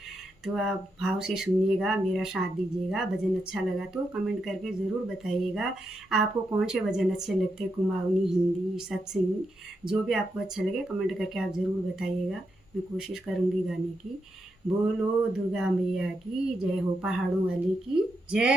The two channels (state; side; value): normal; both; correlation 0.84